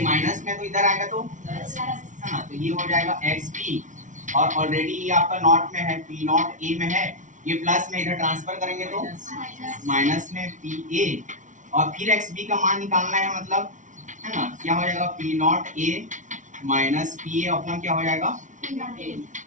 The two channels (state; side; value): late; left; 0.37 ms